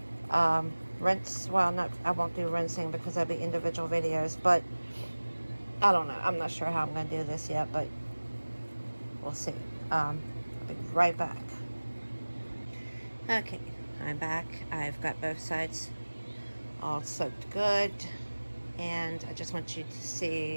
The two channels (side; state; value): both; inverted; correlation -1.00